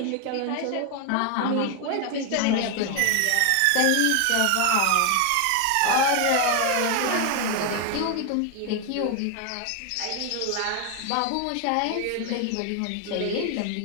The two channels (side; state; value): both; different; correlation 0.01